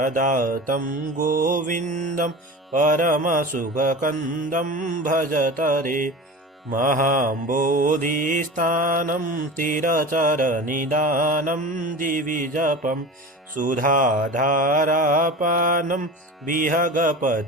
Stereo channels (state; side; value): normal; both; correlation 0.32